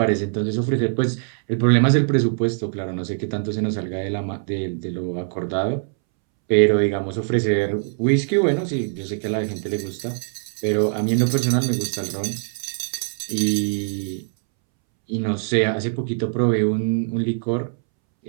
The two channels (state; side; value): silent; left; 64 dB below the other